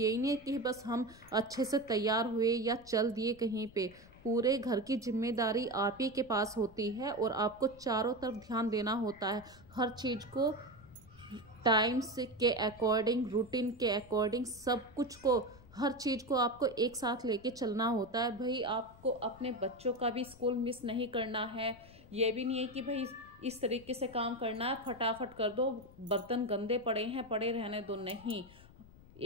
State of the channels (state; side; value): noise; left; rumble, 22 dB below the sound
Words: नहीं है कि बस हम अच्छे से तैयार हुए या चल दिए कहीं पे। पूरे घर की जिम्मेदारी आप ही के पास होती है और आपको चारों तरफ ध्यान देना होता है। हर चीज़ को टाइम से के अकॉर्डिंग, रूटीन के अकॉर्डिंग, सब कुछ को, हर चीज़ को आपको एक साथ लेके चलना होता है। भाई आपको अपने बच्चों का भी स्कूल मिस नहीं करना है। ये भी नहीं है कि भाई इस तरीके से काम करना है फटाफट कर दो, बर्तन गंदे पड़े हैं पड़े रहने दो। नहीं,